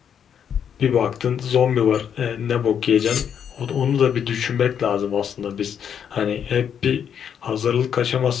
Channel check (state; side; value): quieter; right; 8.2 dB